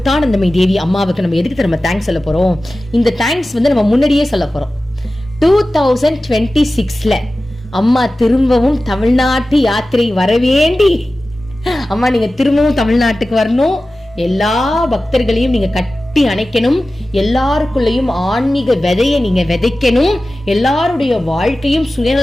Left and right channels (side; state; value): both; normal; correlation 0.95